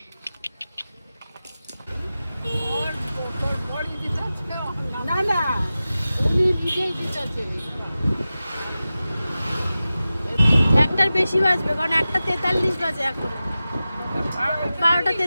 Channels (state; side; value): inverted; both; correlation -0.95